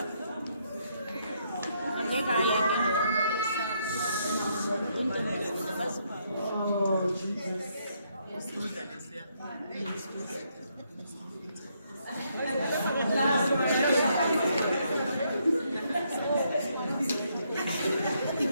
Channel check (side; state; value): both; inverted; correlation -0.74